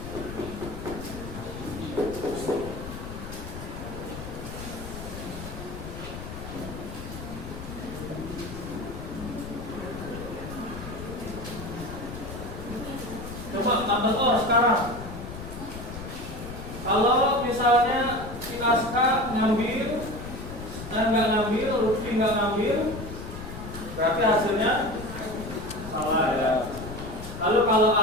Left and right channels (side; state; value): left; noise; rumble, 10 dB below the sound